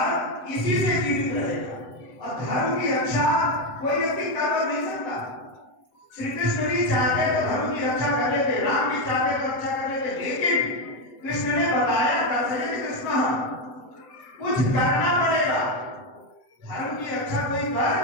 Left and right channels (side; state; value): right; late; 8.0 ms